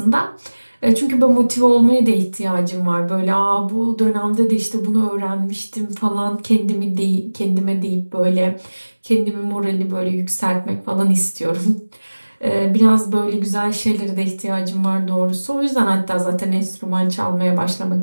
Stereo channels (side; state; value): both; inverted; correlation -1.00